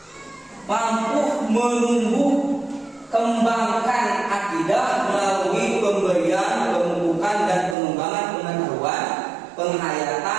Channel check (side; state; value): left; drops out; at 7.8 s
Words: mampu menumbuh kembangkan akidah melalui pemberian, pemupukan dan pengembangan pengetahuan,